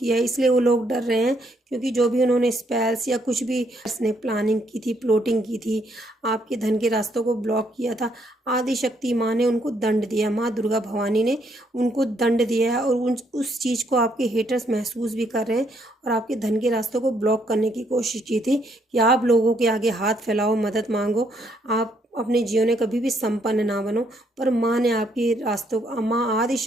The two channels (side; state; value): both; normal; correlation 0.72